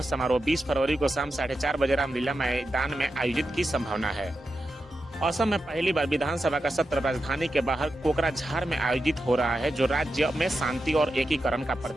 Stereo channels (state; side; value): normal; both; correlation 0.89